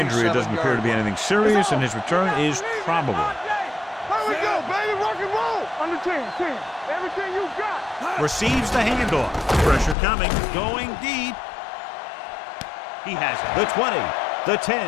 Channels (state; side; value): drops out; right; at 10.0 s